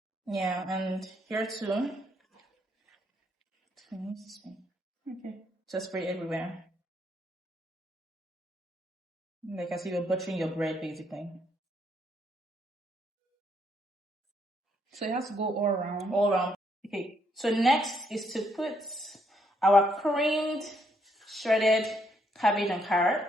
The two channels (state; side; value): normal; both; correlation 0.73